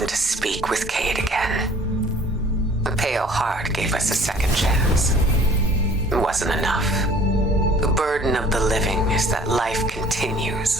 to speak with Cade again. The Pale Heart gave us a second chance. It wasn't enough. The burden of the living is that life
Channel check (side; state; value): both; normal; correlation 0.53